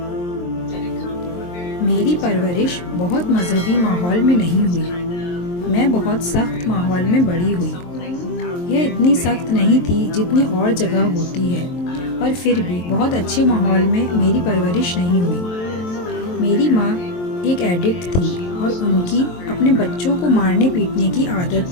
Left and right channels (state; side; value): late; right; 23 ms